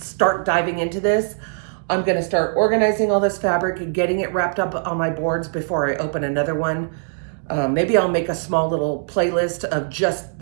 diving into this. I'm gonna start organizing all this fabric and getting it wrapped up on my boards before I open another one. Maybe I'll make a small little playlist of just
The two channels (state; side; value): silent; left; digital silence